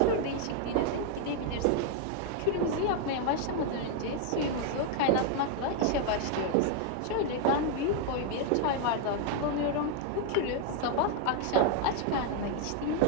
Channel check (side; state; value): both; different; correlation 0.00